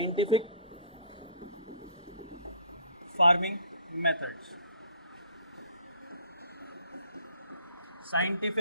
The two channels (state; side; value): inverted; both; correlation -0.55